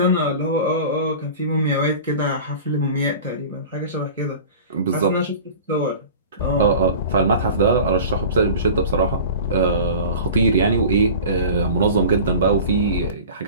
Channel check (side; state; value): both; inverted; correlation -0.38